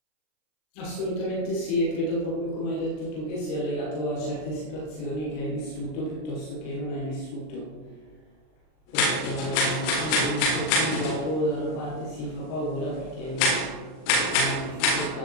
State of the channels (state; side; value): late; right; 39 ms